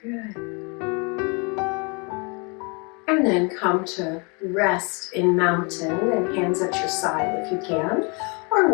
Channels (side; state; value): right; quieter; 32.4 dB